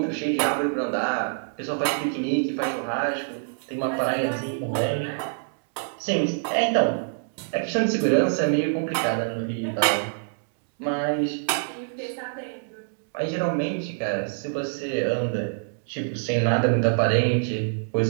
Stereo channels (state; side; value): silent; left; digital silence